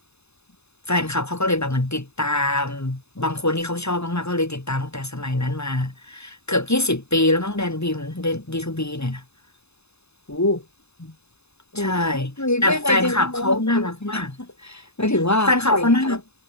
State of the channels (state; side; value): late; right; 0.80 ms